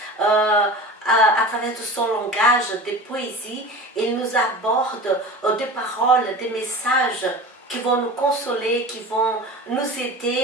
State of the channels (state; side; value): normal; both; correlation 0.34